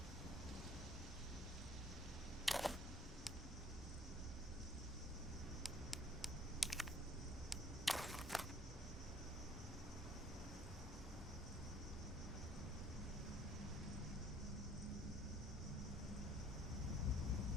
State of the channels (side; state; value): both; normal; correlation 0.57